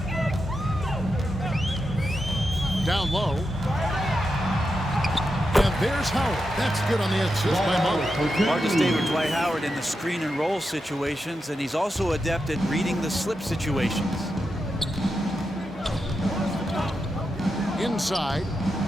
Down low. And there's Howard. That's good on the assist by Monk. Hard to stay with Dwight Howard in the screen and roll situations, and he's also adept at reading the slip situations. Inside.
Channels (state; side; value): normal; both; correlation 0.87